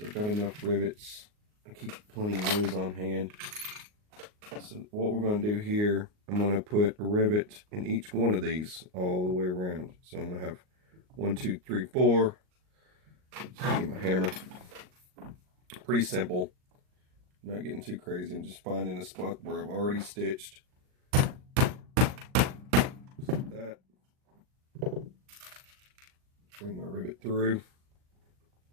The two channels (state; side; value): late; left; 38 ms